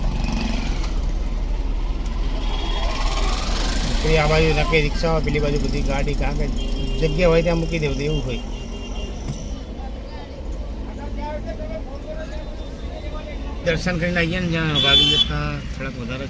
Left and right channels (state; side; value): identical; both; correlation 1.00